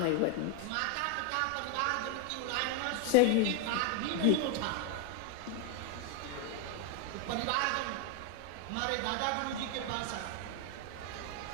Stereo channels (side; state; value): both; different; correlation 0.01